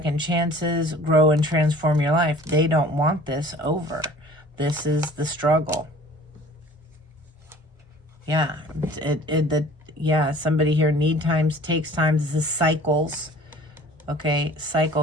chances. Grow and transform your life. They don't want this over. This is the struggle. Yeah. Yeah, somebody here, need times, takes times. This is cycles. Okay,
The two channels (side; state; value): both; normal; correlation 0.48